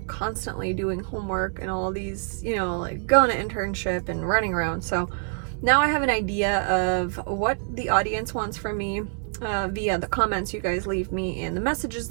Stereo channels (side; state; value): left; silent; 57 dB below the other